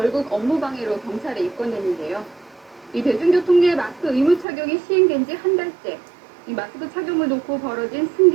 업무방해로 경찰에 입건됐는데요. 이 대중교통 내 마스크 의무 착용이 시행된 지 한 달째. 이 마스크 착용을 놓고 벌어진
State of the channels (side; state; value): left; drops out; at 4.5 s